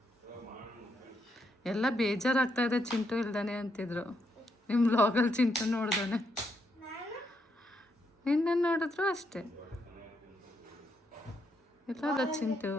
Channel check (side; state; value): both; normal; correlation 0.79